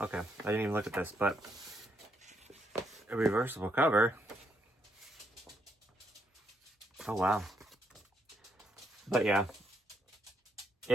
Okay, I didn't even look at this, but a reversible cover. Oh, wow. But yeah,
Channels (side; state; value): both; normal; correlation 0.75